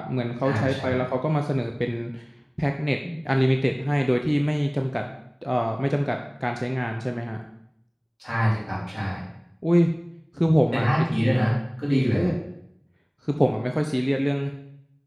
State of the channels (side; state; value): both; identical; correlation 1.00